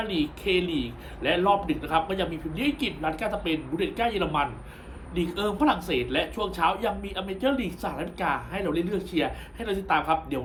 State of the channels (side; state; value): both; identical; correlation 1.00